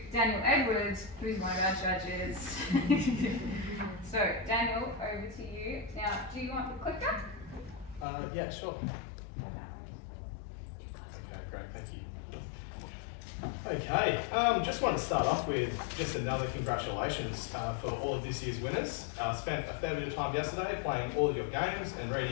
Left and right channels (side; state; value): right; drops out; at 8.1 s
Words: Daniel Edwards, who's one of our judges. So Daniel, over to you. Now, do you want the clicker? Yeah, sure. Okay, great, thank you. Okay, just want to start off with just another congratulations for all of this year's winners. Spent a fair bit of time yesterday playing all of your games and